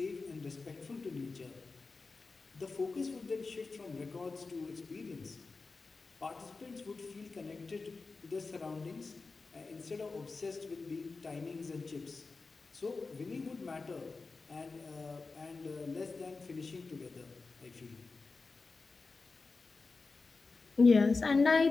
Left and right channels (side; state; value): right; quieter; 4.1 dB